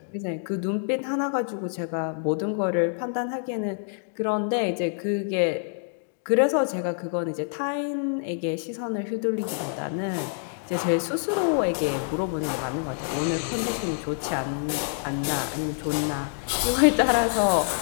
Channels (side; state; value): right; silent; digital silence